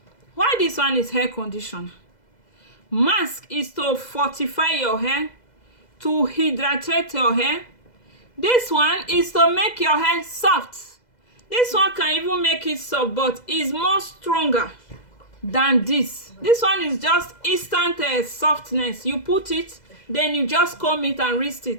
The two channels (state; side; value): late; right; 2.0 ms